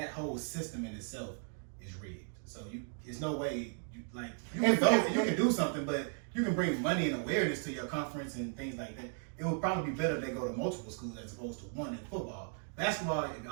whole system in itself is rigged. So it's no way you can do something, but you can bring money and awareness to your conference and things like that. It would probably be better if they go to multiple schools as opposed to one in football. Basketball, if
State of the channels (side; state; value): left; silent; 54 dB below the other